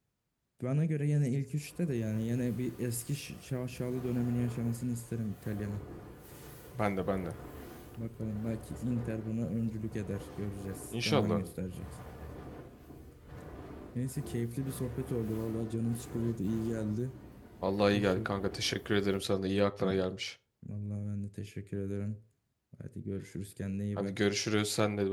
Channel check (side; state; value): both; identical; correlation 1.00